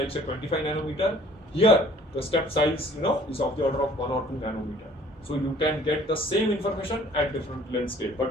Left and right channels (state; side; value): normal; both; correlation 0.54